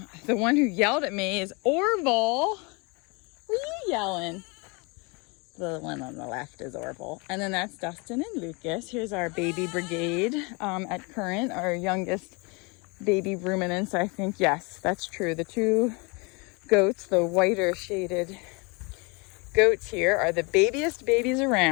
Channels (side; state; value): right; quieter; 29.5 dB